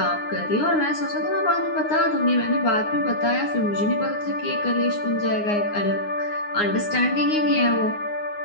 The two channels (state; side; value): late; right; 9.7 ms